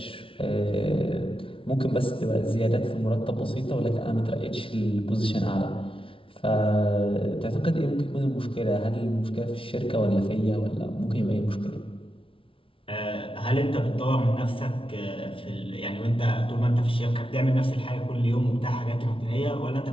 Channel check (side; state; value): right; late; 0.26 ms